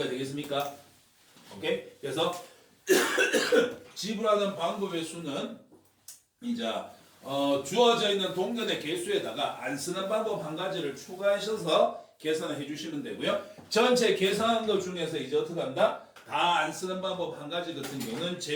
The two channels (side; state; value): both; identical; correlation 1.00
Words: 되겠습니까? 오케이? 그래서 지불하는 방법의 수는 이제 주어져 있는 동전의 개수에다가 안 쓰는 방법 한 가지를 추가하셔서 계산을 해주시면 되고요. 전체 계산한 것 중에서 이제 어떻게 한다? 다 안 쓰는 방법 한 가지 같은 경우는